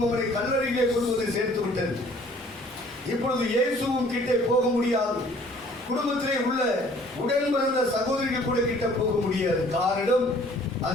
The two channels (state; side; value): normal; both; correlation 0.55